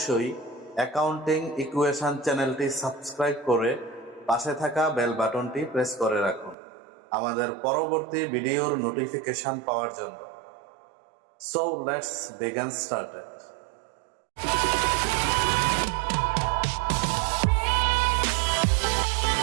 অ্যাকাউন্টিং ইকুয়েশন চ্যানেলটি সাবস্ক্রাইব করে পাশে থাকা বেল বাটনটি প্রেস করে রাখুন আমাদের পরবর্তী ভিডিওর নোটিফিকেশন পাওয়ার জন্য। So let's begin started.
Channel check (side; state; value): left; drops out; at 6.6 s